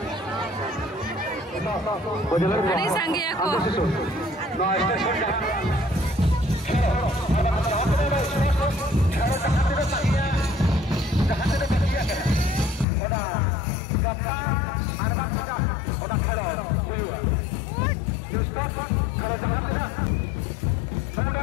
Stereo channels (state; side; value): drops out; right; at 12.9 s